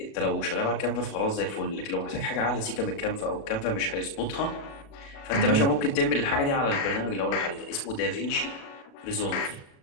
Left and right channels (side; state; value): right; late; 36 ms